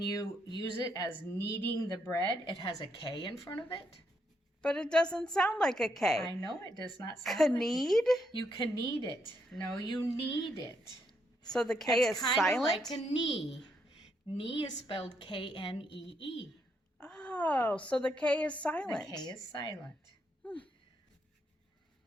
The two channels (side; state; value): both; normal; correlation 0.77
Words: you use it as kneading the bread, it has a K in front of it? But it doesn't sound like a K. I know it does not sound like Knead? You can knead it. No, you knead it. So the K is silent? It's kind of like a knee. Knee is spelled K-N-E-E. Oh, so the K is silent. The K is silent.